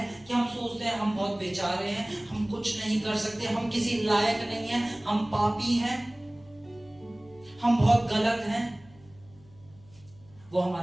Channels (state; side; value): noise; left; hum, 26 dB below the sound